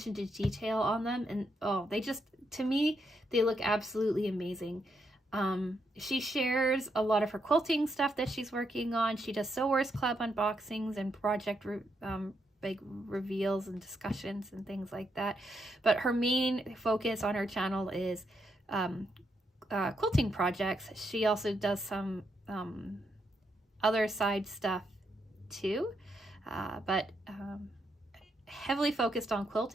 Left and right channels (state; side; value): normal; both; correlation 0.80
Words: to detail on them, and oh, they just, to me, they look absolutely amazing. She shares a lot of her quilting stuff that she's working on. She does Sewers Club unboxings and project like reveals and discussions and things like that, but her main focus on her channel is quilting projects. She also does some other side stuff too, but heavily focused on